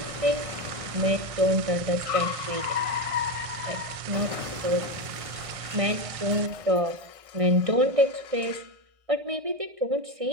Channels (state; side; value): late; left; 1.6 ms